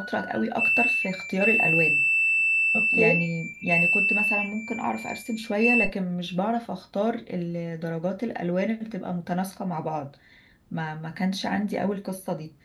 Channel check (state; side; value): identical; both; correlation 1.00